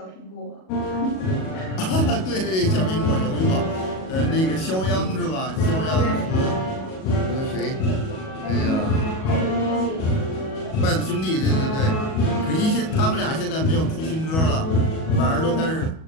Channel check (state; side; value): late; right; 37 ms